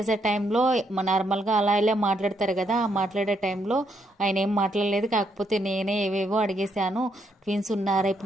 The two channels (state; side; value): normal; both; correlation 0.75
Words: టైంలో నార్మల్గా అలా ఇలా మాట్లాడతారు కదా, ఆ మాట్లాడే టైంలో ఆయన ఏం మాట్లాడలేదు. కాకపోతే నేనే ఏవేవో అడిగేశాను. ట్విన్స్ ఉన్నారా,